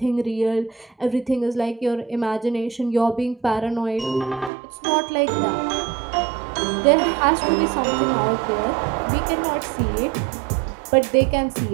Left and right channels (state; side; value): drops out; left; at 4.5 s